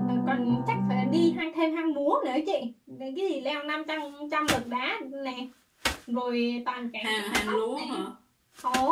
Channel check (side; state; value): both; identical; correlation 1.00